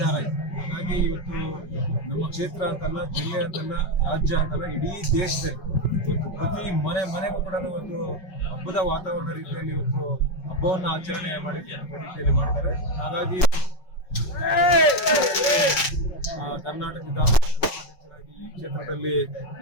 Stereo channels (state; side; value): late; right; 5.4 ms